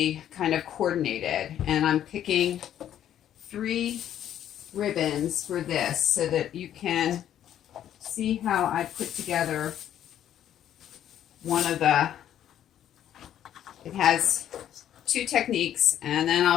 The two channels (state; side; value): quieter; right; 10.8 dB